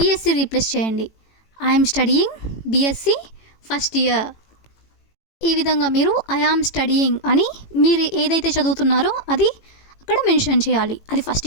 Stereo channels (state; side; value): late; right; 18 ms